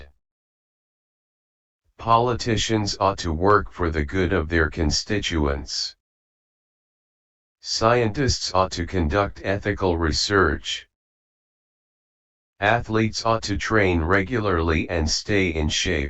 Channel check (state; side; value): identical; both; correlation 1.00